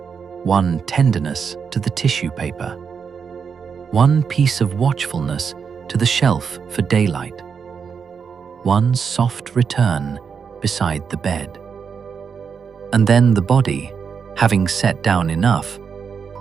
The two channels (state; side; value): quieter; left; 6.3 dB